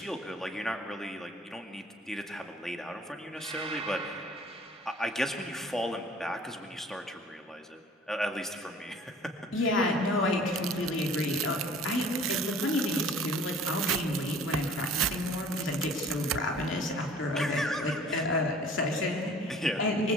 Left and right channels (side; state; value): both; normal; correlation 0.50